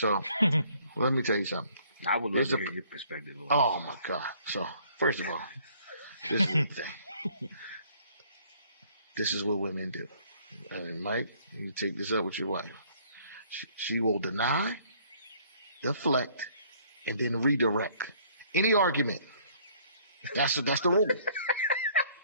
let me tell you something. I would love to hear your perspective. Oh my God! So first of all, this is the thing. This is what women do. And Mike, you take this up with your wife. She will deny, deflect, and then redirect. Any argument. That's the rule.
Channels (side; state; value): both; inverted; correlation -0.60